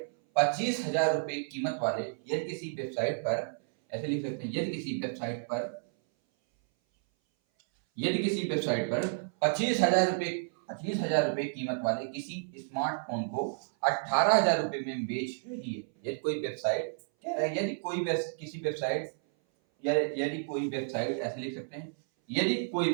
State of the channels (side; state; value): left; silent; 57 dB below the other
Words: 25,000 रुपए कीमत वाले, यदि किसी वेबसाइट पर, ऐसे लिख सकते हैं, यदि किसी वेबसाइट पर, यदि किसी वेबसाइट पर 25,000 रुपए कीमत वाले किसी स्मार्टफोन को 18,000 रुपए में बेच रही है, यदि कोई वेबसाइट, कह रहा है यदि कोई किसी वेबसाइट, या यदि कोई वेबसाइट, ऐसे लिख सकते हैं, यदि कोई